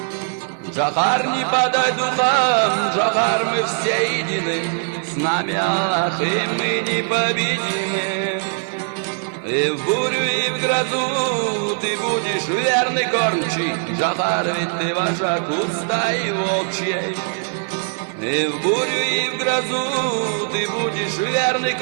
Джохар, не подай духом, Джохар, мы все едины, с нами Аллах, и мы непобедимы. И в бурю, и в грозу ты будешь верный кормчий, Джохар, ведь ты вожак у стаи волчьей. И в бурю, и в грозу ты будешь верный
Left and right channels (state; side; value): silent; left; 65 dB below the other